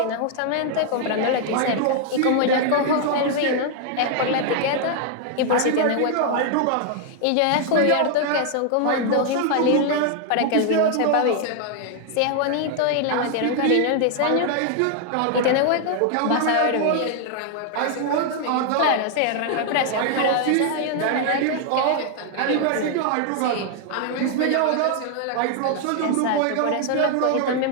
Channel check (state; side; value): different; both; correlation 0.00